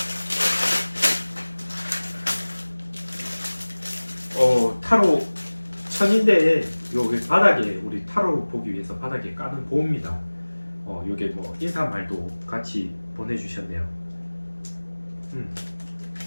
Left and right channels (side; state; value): both; inverted; correlation -1.00